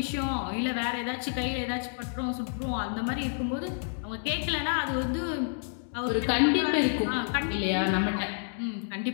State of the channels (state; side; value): silent; right; digital silence